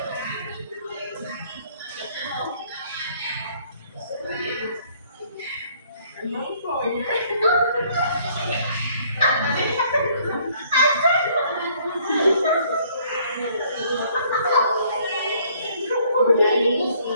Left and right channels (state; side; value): inverted; both; correlation -0.62